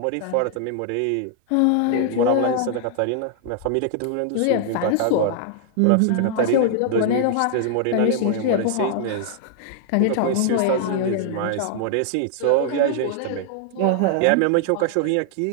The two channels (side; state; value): both; different; correlation 0.00